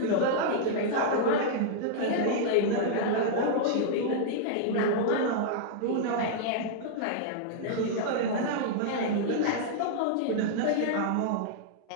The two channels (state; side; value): different; both; correlation -0.01